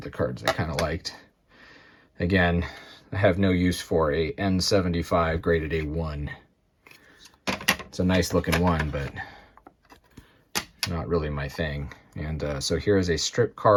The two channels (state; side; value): identical; both; correlation 1.00